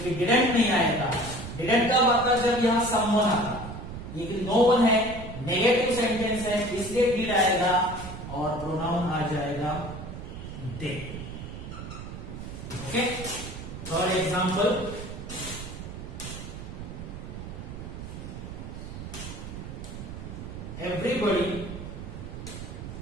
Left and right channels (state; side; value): noise; right; rumble, 9 dB below the sound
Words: डिडंट नहीं आएगा. डिडंट कब आता है? जब यहां समवन आता. लेकिन नो वन है, नेगेटिव सेंटेंस है, इसलिए डिड आएगा और प्रोनाउन आ जाएगा they. Okay, third example.